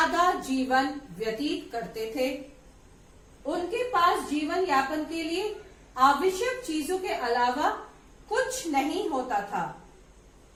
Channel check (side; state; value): both; identical; correlation 1.00